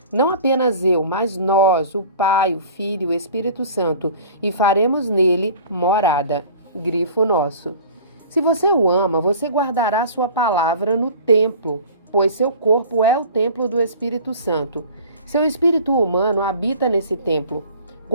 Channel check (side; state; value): both; inverted; correlation -0.45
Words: Não apenas eu, mas nós, o Pai, o Filho e o Espírito Santo, e faremos nele morada. Grifo nosso. Se você o ama, você guardará sua palavra no templo, pois seu corpo é o templo do Espírito Santo. Seu espírito humano habita nesse templo.